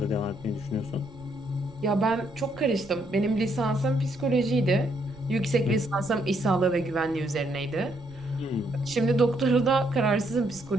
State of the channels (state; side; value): noise; right; rumble, 22 dB below the sound